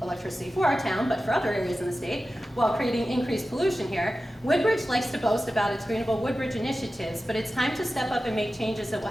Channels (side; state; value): both; normal; correlation 0.94